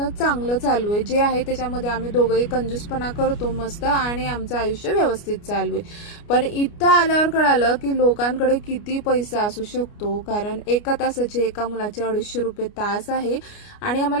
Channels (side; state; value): right; late; 29 ms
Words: चांगलं चालू आहे. जे आहे त्याच्यामध्ये आम्ही दोघंही कंजूसपणा करतो मस्त आणि आमचं आयुष्य व्यवस्थित चालू आहे. पण इथं आल्यावर कळालं की लोकांकडे किती पैसा असू शकतो. कारण एका तासाचे एका मुलाचे 250 रुपये तास आहे आणि